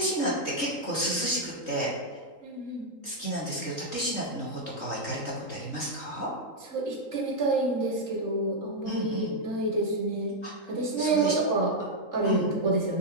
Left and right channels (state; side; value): late; right; 3.8 ms